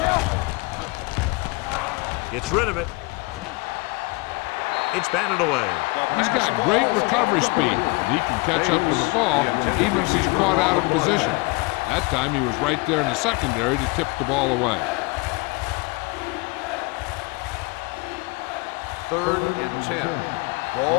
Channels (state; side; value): quieter; right; 26.2 dB